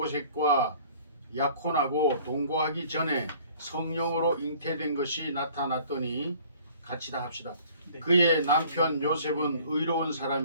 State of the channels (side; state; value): both; inverted; correlation -0.53